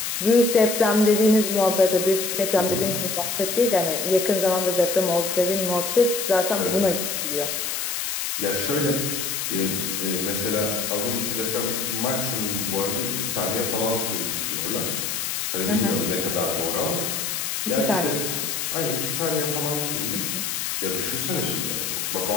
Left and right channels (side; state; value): left; noise; hiss, 2 dB below the sound